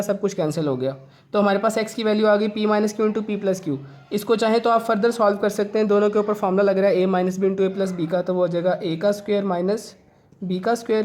सब कुछ कैंसिल हो गया। तो हमारे पास x की वैल्यू आ गई p minus Q into p plus Q. इसको चाहे तो आप फर्दर सॉल्व कर सकते हैं, दोनों के ऊपर फार्मूला लग रहा है a minus b into a plus b का, तो वो हो जाएगा a का स्क्वायर माइनस b का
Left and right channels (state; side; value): identical; both; correlation 1.00